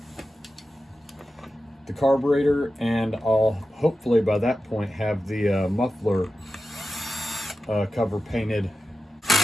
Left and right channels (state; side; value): normal; both; correlation 0.92